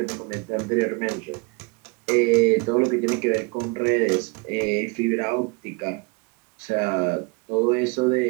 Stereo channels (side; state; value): left; quieter; 28.9 dB